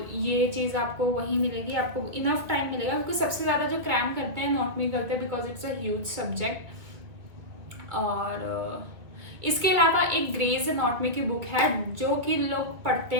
ये चीज़ आपको वहीं मिलेगी, आपको इनफ टाइम मिलेगा, क्योंकि सबसे ज़्यादा जो क्रैम करते हैं एनाटॉमी करते हैं because it's a huge subject. और इसके अलावा एक ग्रेज एनाटॉमी की बुक है जो कि लोग पढ़ते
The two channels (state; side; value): late; left; 2.4 ms